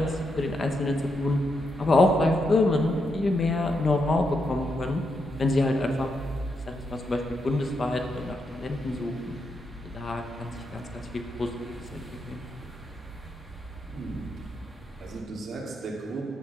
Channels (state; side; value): normal; both; correlation 0.82